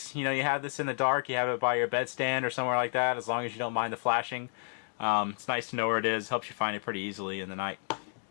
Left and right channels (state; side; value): silent; right; 57 dB below the other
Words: You know, you have this in the dark, you have it by your bedstand or somewhere like that, as long as you don't mind the flashing. It's nice to know where it is. Helps you find it pretty easily in the night.